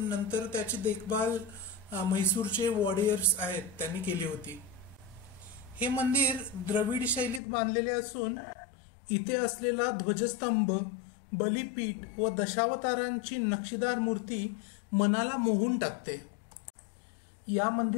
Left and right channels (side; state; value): right; drops out; at 7.4 s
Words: नंतर त्याची देखभाल म्हैसूरचे वॉरियर्स आहेत त्यांनी केली होती. हे मंदिर द्रविड शैलीत बांधलेले असून इथे असलेला ध्वजस्तंभ, बलिपीठ व दशावतारांची नक्षीदार मूर्ती मनाला मोहून टाकते. या